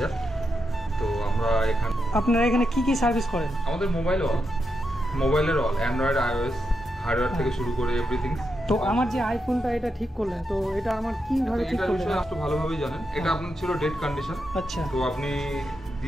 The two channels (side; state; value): both; normal; correlation 0.85